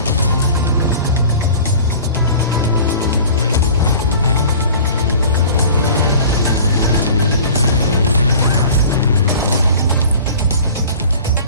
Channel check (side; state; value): both; inverted; correlation -0.43